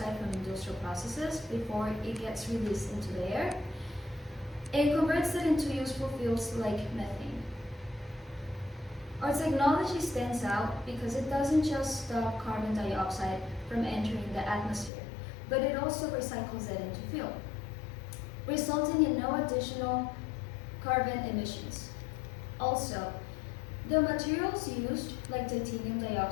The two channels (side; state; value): right; drops out; at 14.9 s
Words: from industrial processes before it gets released into the air and converts it into useful fuels like methane. Our technology stands out because it doesn't just stop carbon dioxide from entering the atmosphere, but it also recycles it into fuel, resulting in no additional carbon emissions. Also, the materials used, like titanium